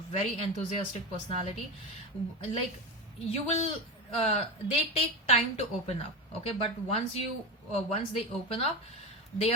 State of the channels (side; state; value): both; normal; correlation 0.19